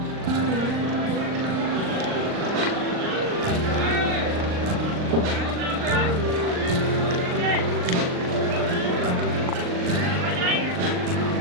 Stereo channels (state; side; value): late; left; 39 ms